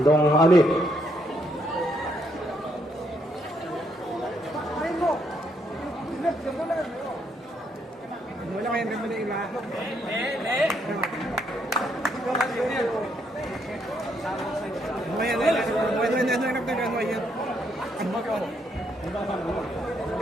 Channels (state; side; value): normal; both; correlation 0.74